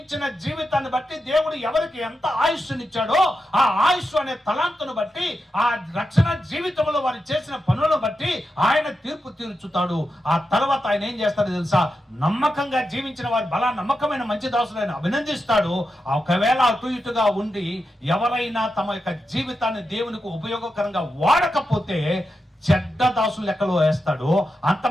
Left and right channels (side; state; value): both; normal; correlation 0.88